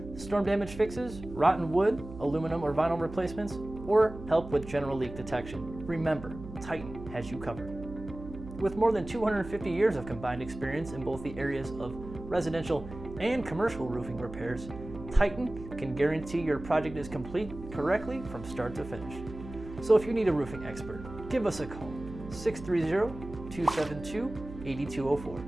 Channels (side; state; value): right; noise; hum, 13 dB below the sound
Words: storm damage fixes, rotten wood, aluminum or vinyl replacements, or help with general leak detection, remember, Titan has you covered. With more than 250 years of combined experience in both the areas of residential and commercial roofing repairs, Titan can guarantee your project is complete correctly from start to finish. So if you need a roofing expert, give us a call,